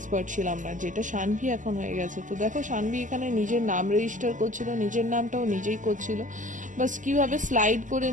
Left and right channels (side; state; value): left; late; 0.37 ms